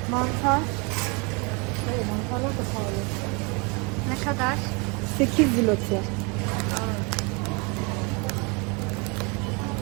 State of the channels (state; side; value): quieter; left; 31.1 dB